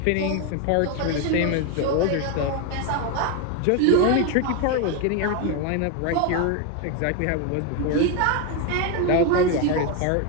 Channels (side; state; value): both; different; correlation 0.01